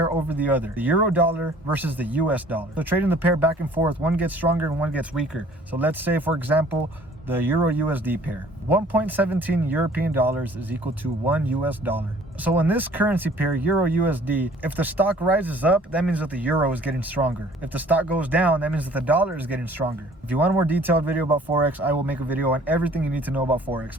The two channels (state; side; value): normal; both; correlation 0.54